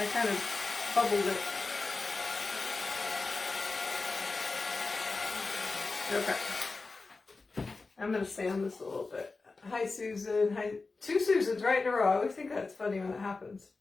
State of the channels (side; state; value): right; quieter; 3.9 dB